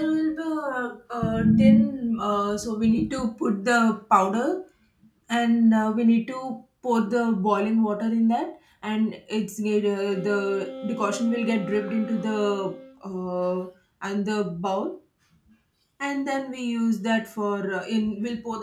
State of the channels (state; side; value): identical; both; correlation 1.00